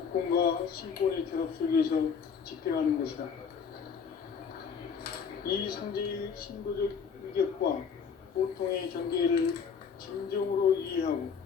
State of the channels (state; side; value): quieter; right; 6.4 dB